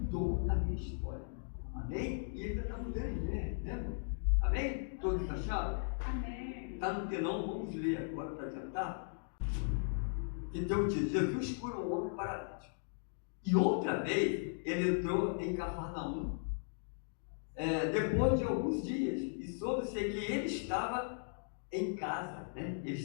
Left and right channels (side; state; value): right; silent; digital silence